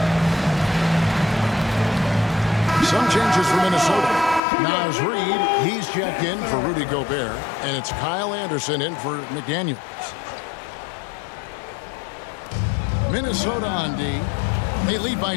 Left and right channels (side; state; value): right; drops out; at 4.4 s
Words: Some changes for Minnesota. Naz Reid, he's checked in for Rudy Gobert, and it's Kyle Anderson in for McDaniels. Minnesota on D. They lead by